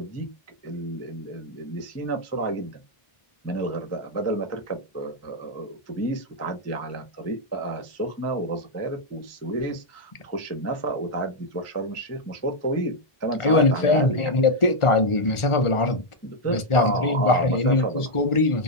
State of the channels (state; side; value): late; right; 1.4 ms